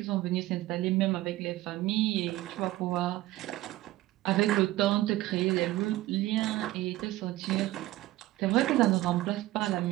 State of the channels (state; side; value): quieter; left; 16.8 dB